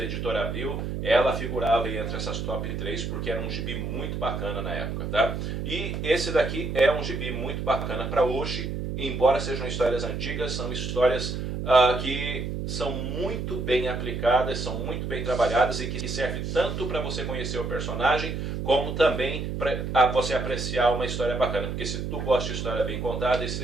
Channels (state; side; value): noise; right; hum, 3 dB below the sound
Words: Editora Abril, ela figurava entre essas top 3 porque era um gibi muito bacana na época, tá? E esse daqui é um gibi muito bacana para hoje, embora sejam histórias antigas, são histórias que são muito bem aplicadas, são muito bem trabalhadas e que servem tanto para você conhecer o personagem, como também para você apreciar uma história bacana. Porque se tu gosta de história bem contada, esse